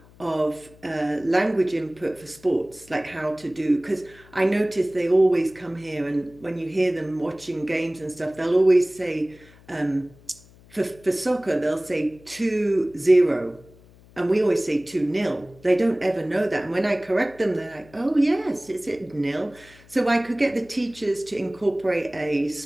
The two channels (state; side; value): noise; left; hum, 25 dB below the sound